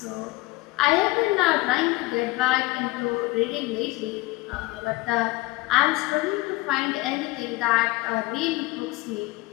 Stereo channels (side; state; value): right; quieter; 21.3 dB